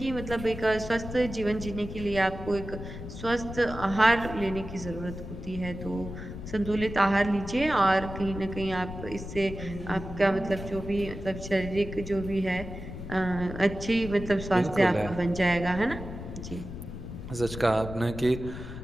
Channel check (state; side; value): noise; left; rumble, 10 dB below the sound